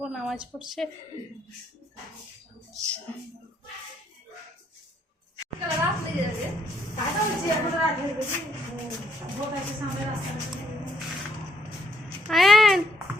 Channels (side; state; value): both; normal; correlation 0.70